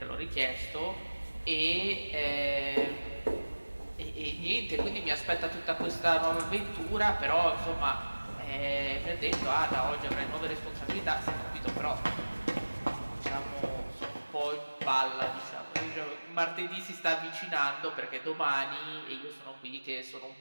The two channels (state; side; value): inverted; both; correlation -1.00